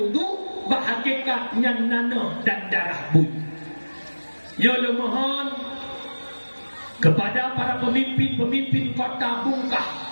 bahagikat yang nanah dan darah bui. Ya Allah mohon kepada para pemimpin kota Bungkah,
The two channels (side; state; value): both; inverted; correlation -1.00